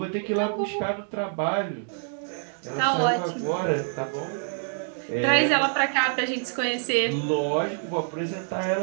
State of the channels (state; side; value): silent; left; 61 dB below the other